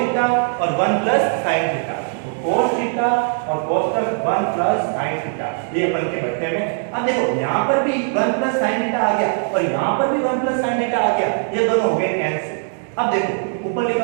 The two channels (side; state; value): left; silent; 60 dB below the other